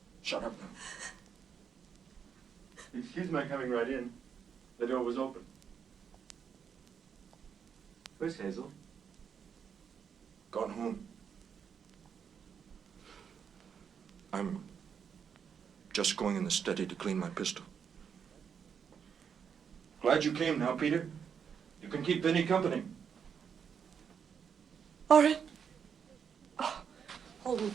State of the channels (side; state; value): left; quieter; 7.2 dB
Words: Shut up now. Excuse my coming right in. The door was open. Where's Hazel? Gone home. I'm just going in the study to clean my pistol. Glad you came now, Peter. You can keep Vinny company. Orin. Oh, hold me